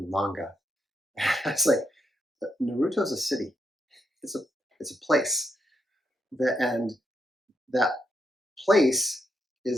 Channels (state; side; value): normal; both; correlation 0.81